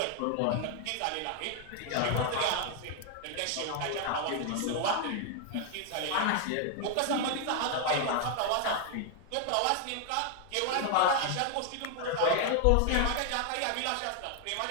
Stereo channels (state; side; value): different; both; correlation 0.00